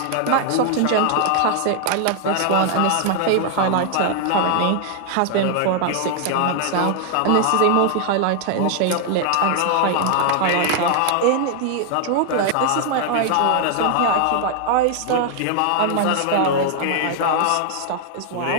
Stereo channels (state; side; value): different; both; correlation 0.00